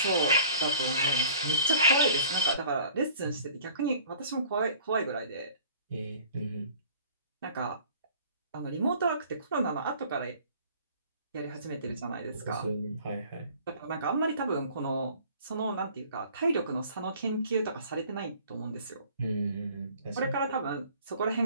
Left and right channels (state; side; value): inverted; both; correlation -0.50